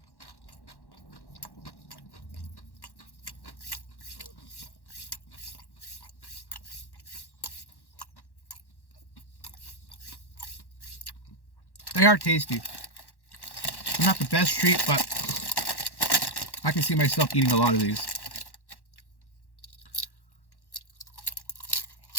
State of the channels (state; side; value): late; right; 1.1 ms